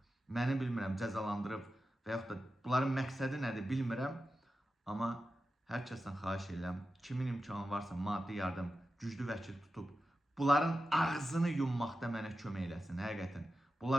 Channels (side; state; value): both; normal; correlation 0.92